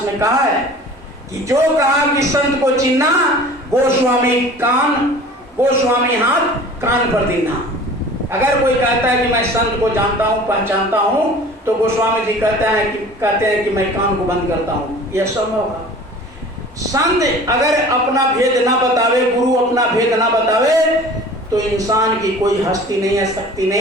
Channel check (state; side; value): normal; both; correlation 0.43